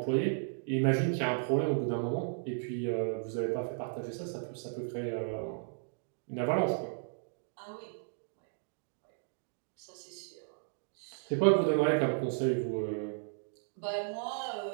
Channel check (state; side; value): silent; left; digital silence